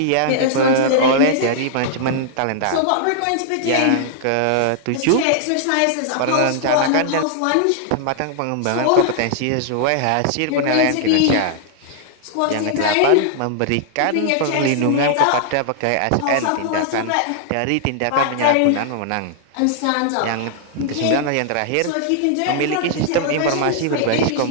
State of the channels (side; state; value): both; different; correlation -0.01